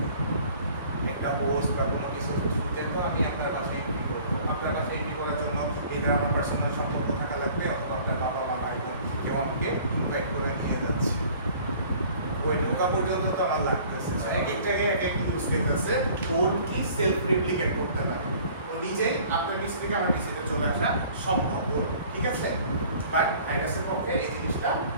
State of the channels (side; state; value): both; inverted; correlation -0.51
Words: একটা হোস্ট বা কোনো কিছু থ্রুতে তো আমি আপনার বাসায় এন্ট্রি করবো। আপনার বাসায় এন্ট্রি করার জন্য এটা আমার পার্সোনাল সম্পর্ক থাকা লাগবে, অথবা আপনার বাবা মা ভাই বোন কেউ আমাকে ইনভাইট করে নিয়ে যাচ্ছে, ওই ঢোকা পর্যন্ত তো আমার লাগতেছে। এক এক জায়গায় এক এক ইউজ কেস আছে, ওর কি সেলফ রেপ্লিকেট করতে পারে, ও নিজেই আপনার পিসি থেকে আমার পিসিতে চলে আসা সম্ভব ওর, ঠিক আছে। বাট ভাইরাসের পক্ষে এই জিনিসটা